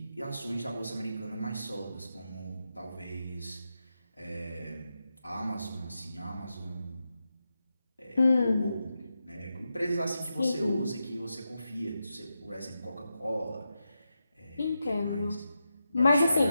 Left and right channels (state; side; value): inverted; both; correlation -0.88